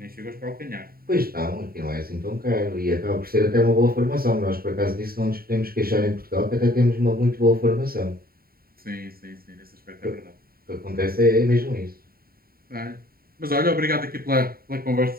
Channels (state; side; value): late; left; 0.43 ms